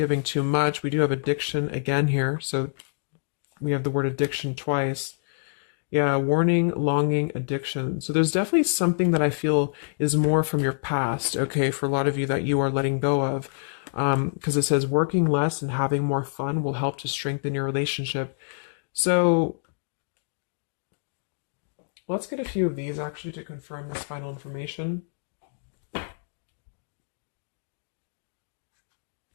too much. We do have addiction again here. So we have the word addiction twice. Yeah, warning, longing, addiction. So there's definitely something that I feel is more from your past, okay, for a lot of you that you are letting go of. Because it says working less and having more fun will help to strengthen your relationship. So let's get a few of these actually to confirm this final information.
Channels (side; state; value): right; silent; digital silence